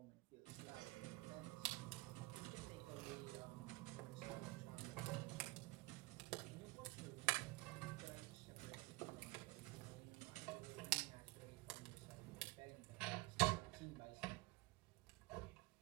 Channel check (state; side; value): quieter; left; 22.1 dB